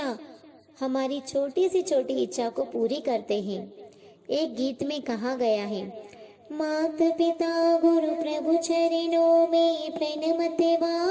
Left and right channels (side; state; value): both; identical; correlation 1.00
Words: हमारी छोटी सी छोटी इच्छा को पूरी करते हैं। एक गीत में कहा गया है, मात पिता गुरु प्रभु चरणों में प्रणमते